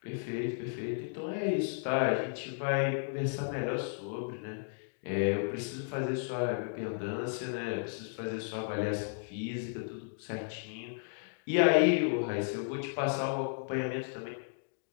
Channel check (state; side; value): silent; right; digital silence